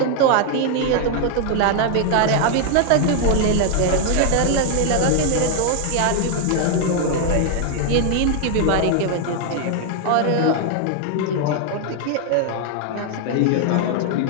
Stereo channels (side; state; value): both; different; correlation 0.00